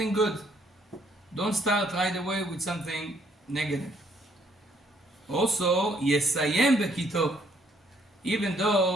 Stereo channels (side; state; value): both; normal; correlation 0.67